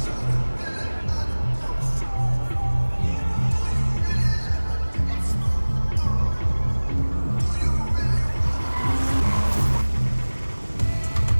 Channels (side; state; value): both; inverted; correlation -1.00